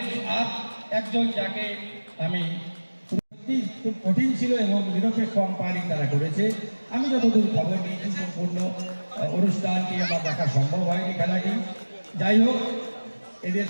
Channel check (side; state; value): both; inverted; correlation -1.00